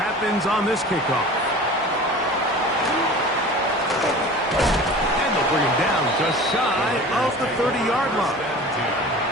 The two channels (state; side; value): normal; both; correlation 0.39